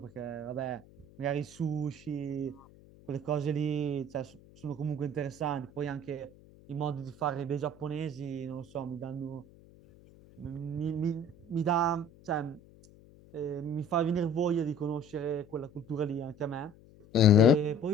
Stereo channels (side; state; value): left; noise; hum, 24 dB below the sound